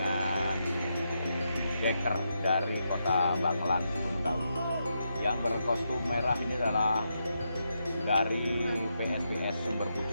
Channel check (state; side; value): inverted; both; correlation -0.83